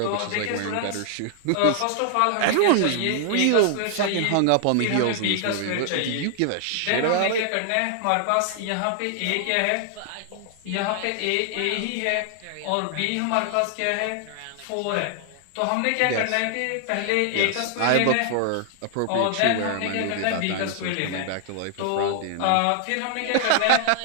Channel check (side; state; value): both; different; correlation 0.00